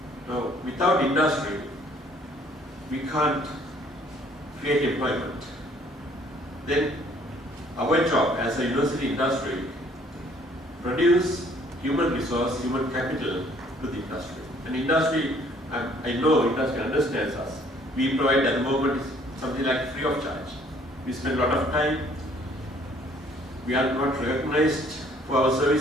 Now, without industry, we can't create employment. Then our job as a university industry, produce human resource, human capital to the industry. And industry, I know industry understands us. We provide at the moment something like free of charge. We spend a lot of time. We are not recognized for our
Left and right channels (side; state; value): both; normal; correlation 0.60